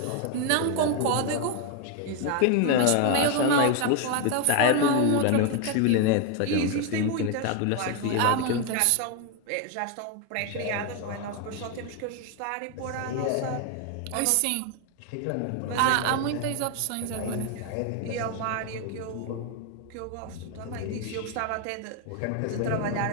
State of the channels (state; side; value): different; both; correlation 0.01